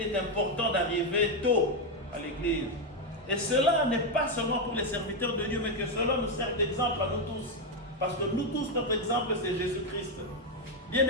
est important d'arriver tôt à l'église. Et cela n'est pas seulement pour les serviteurs de Dieu, mais que cela nous sert d'exemple à nous tous. Parce que nous tous, notre exemple, c'est Jésus-Christ.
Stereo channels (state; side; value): normal; both; correlation 0.05